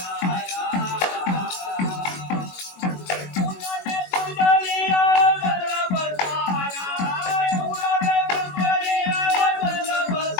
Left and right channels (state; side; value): late; right; 21 ms